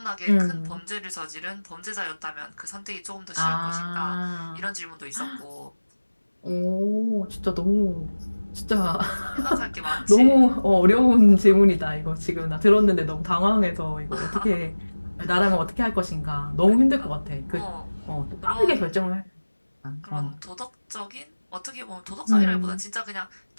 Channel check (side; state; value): both; inverted; correlation -1.00